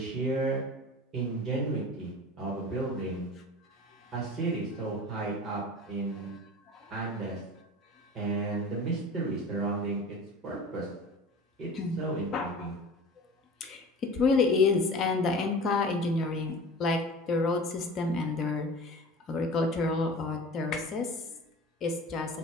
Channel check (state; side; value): normal; both; correlation 0.38